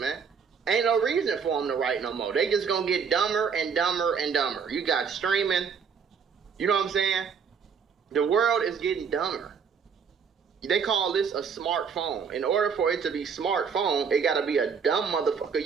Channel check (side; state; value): left; quieter; 6.3 dB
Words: man, ain't no reason for them to write no more. They just gonna get dumber and dumber and dumber. You got streaming. You know what I'm saying? The world is getting dumber. They call this a smartphone. In order for it to be smartphone, it gotta be a dumb motherfucker